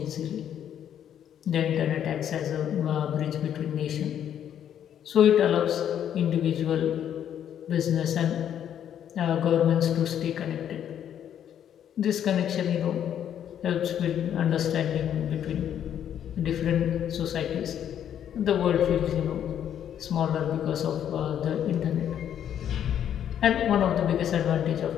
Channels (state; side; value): quieter; right; 9.7 dB